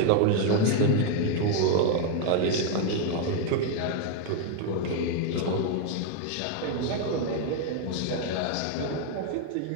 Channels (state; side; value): different; both; correlation 0.01